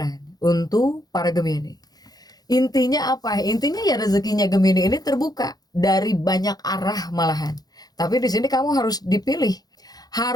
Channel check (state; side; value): late; right; 0.19 ms